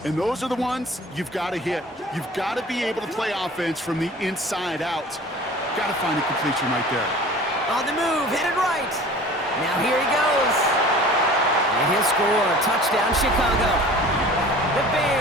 And those are the ones you've got to hit. You've got to be able to play offense from the inside out. Got to find a completion right there. On the move, headed right. Now here he goes. And he'll score. Touchdown, Chicago. The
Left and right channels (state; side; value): normal; both; correlation 0.43